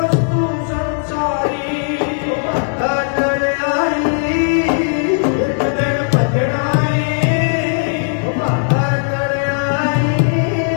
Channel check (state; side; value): silent; right; 64 dB below the other